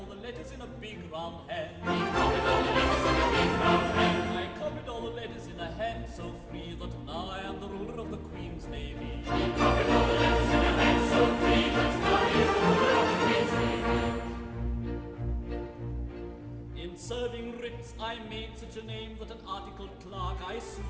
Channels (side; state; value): both; identical; correlation 1.00